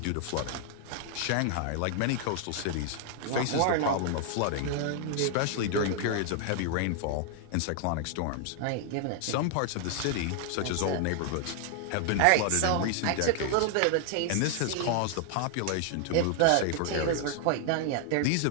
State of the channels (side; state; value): both; different; correlation 0.00